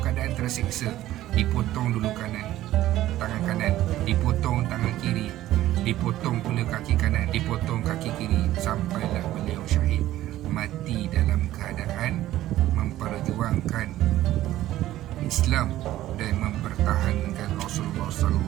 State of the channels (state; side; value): quieter; left; 14.4 dB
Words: keadaan tersiksa. Dipotong dulu tangan kanan, dipotong tangan kiri, dipotong pula kaki kanan, dipotong kaki kiri, sampailah beliau syahid, mati dalam keadaan memperjuangkan Islam dan mempertahankan Rasulullah